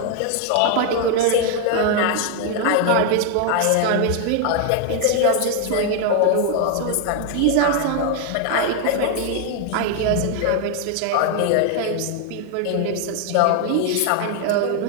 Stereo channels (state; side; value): different; both; correlation 0.01